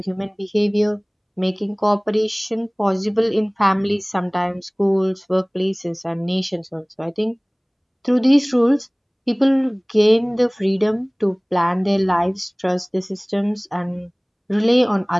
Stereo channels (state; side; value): identical; both; correlation 1.00